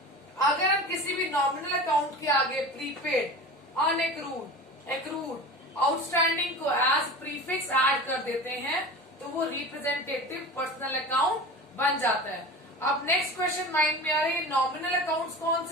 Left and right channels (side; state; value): both; normal; correlation 0.33